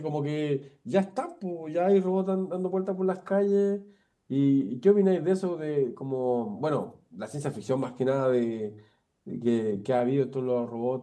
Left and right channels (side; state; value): both; identical; correlation 1.00